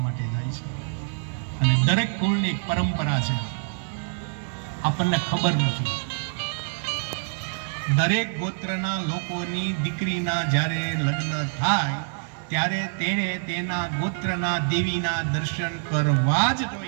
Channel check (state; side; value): silent; left; 61 dB below the other